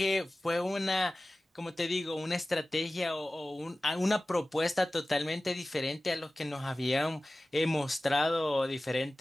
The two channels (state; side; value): normal; both; correlation 0.97